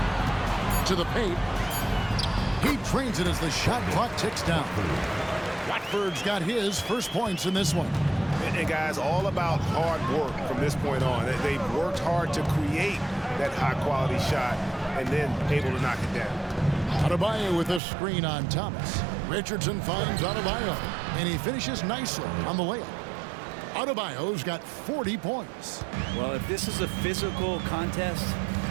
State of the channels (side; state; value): left; drops out; at 17.8 s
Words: To the paint. He drains it as the shot clock ticks down. Watford's got his first points in this one. And guys, all about hard work from this point on. They've worked hard to create that high-quality shot and then able to knock it down. Adebayo with a screen on Thomas. Richardson finds Adebayo, and he finishes nicely on the layup. Adebayo's got 40 points. Well, if this is a physical contest,